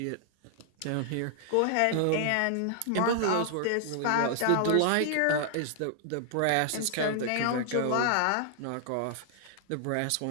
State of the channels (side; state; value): both; different; correlation -0.01